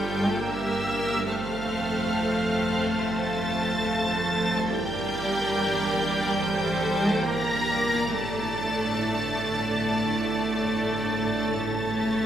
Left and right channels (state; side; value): noise; right; hum, 9 dB below the sound